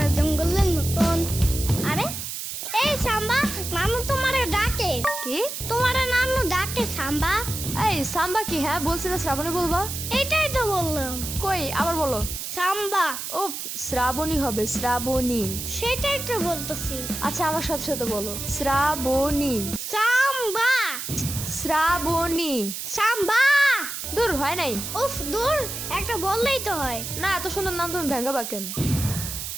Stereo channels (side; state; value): right; noise; hiss, 6 dB below the sound